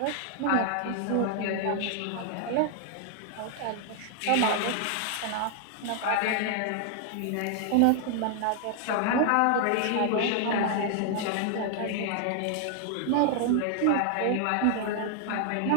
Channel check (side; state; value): both; different; correlation 0.00